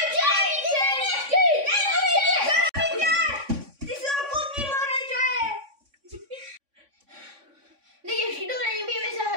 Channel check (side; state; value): left; late; 3.5 ms